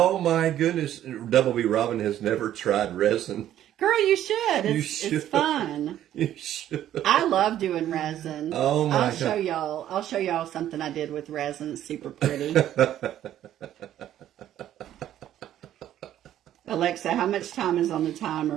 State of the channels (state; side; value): quieter; left; 11.8 dB